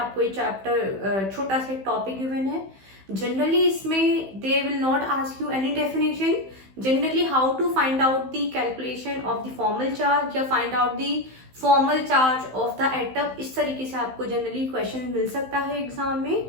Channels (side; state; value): left; late; 15 ms